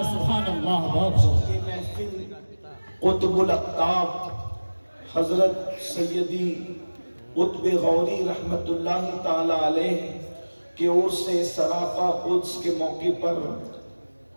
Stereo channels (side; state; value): both; inverted; correlation -1.00